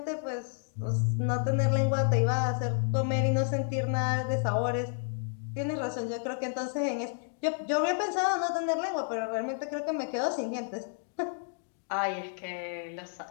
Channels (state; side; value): silent; right; digital silence